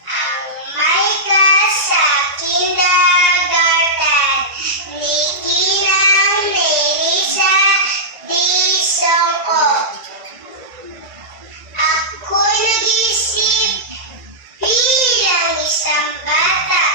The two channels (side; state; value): left; late; 1.9 ms